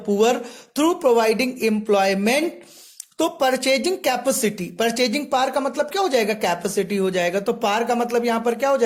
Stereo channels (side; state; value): both; identical; correlation 1.00